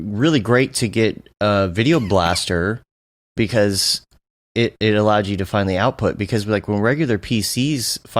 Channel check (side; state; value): both; identical; correlation 1.00